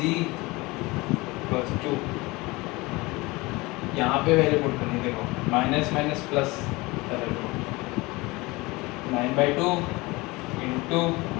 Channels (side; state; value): right; quieter; 22.8 dB